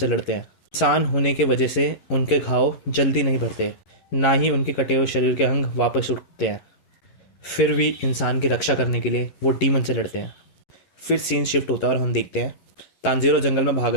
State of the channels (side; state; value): right; late; 11 ms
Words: लड़ते हैं। इंसान होने की वजह से उनके घाव जल्दी नहीं भरते, ना ही उनके कटे हुए शरीर के अंग वापस उठते हैं। फिर भी इंसान की रक्षा करने के लिए वो डीमन से लड़ते हैं। फिर सीन शिफ्ट होता है और हम देखते हैं तांजीरो जंगल में भाग